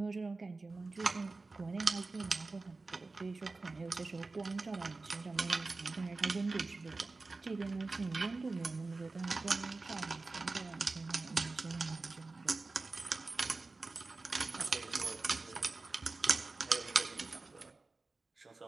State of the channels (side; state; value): left; quieter; 3.6 dB